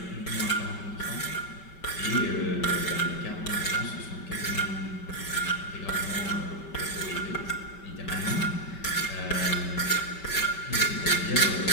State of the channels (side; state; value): right; late; 5.2 ms